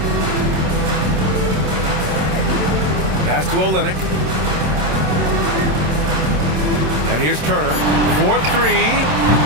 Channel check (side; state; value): left; late; 27 ms